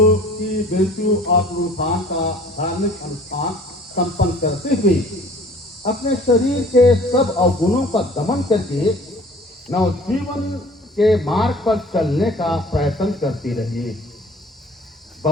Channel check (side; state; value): both; normal; correlation 0.50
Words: की मृत्यु और पुनरुत्थान का धार्मिक अनुष्ठान संपन्न करते हुए अपने शरीर के सब अवगुणों का दमन करके नवजीवन के मार्ग पर चलने का प्रयत्न करते रहिए।